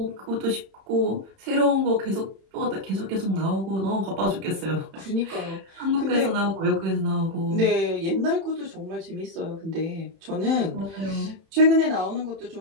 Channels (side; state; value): left; late; 31 ms